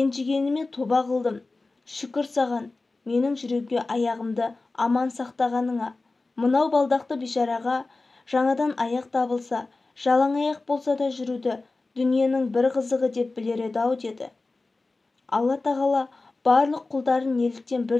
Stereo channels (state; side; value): quieter; right; 3.4 dB